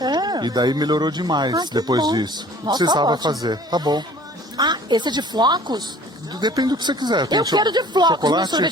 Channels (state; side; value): normal; both; correlation 0.50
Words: E daí melhorou demais Ah, que depois bom. disso. Nossa, Precisava ótimo. fazer. Tá bom. Ah, esse é de flocos? Depende do que você quiser. Tem Eu quero de flocos, chocolate meu